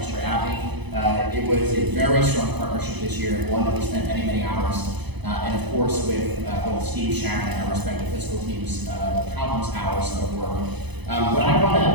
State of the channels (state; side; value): late; left; 0.99 ms